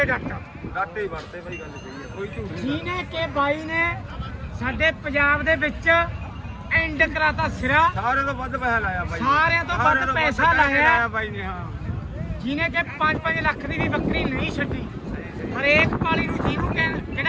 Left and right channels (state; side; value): identical; both; correlation 1.00